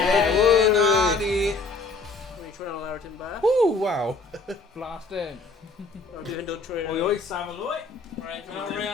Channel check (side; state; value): right; quieter; 3.6 dB